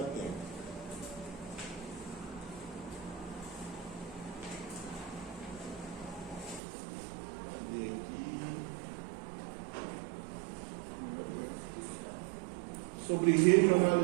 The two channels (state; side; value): drops out; left; at 6.6 s